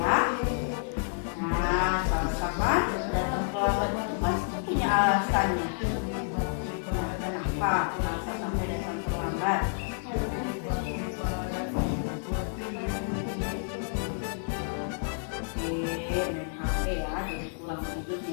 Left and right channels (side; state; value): right; silent; digital silence